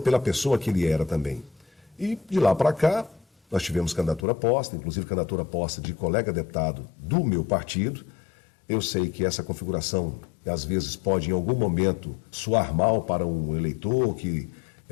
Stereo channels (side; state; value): right; drops out; at 4.2 s